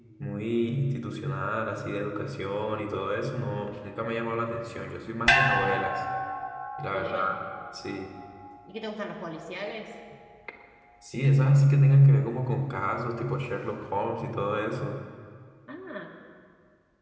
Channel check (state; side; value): identical; both; correlation 1.00